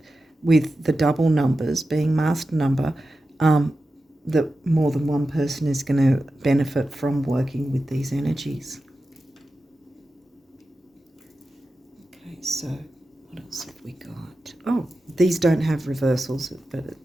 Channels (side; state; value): both; normal; correlation 0.92